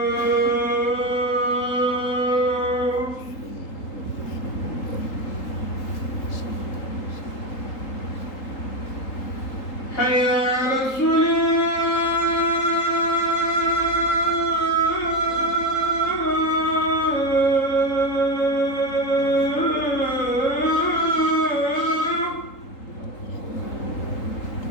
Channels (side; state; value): right; late; 3.8 ms